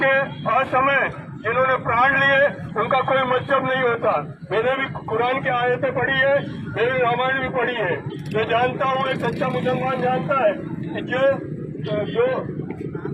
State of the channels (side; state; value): both; identical; correlation 1.00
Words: असमय जिन्होंने प्राण लिए, उनका कोई मतलब नहीं होता। मैंने भी कुरान की आयतें पढ़ी है, मैंने रामायण भी पढ़ी है। मैं जानता हूँ, एक सच्चा मुसलमान जानता है कि जो